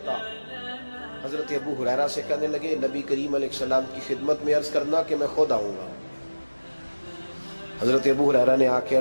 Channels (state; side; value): inverted; both; correlation -1.00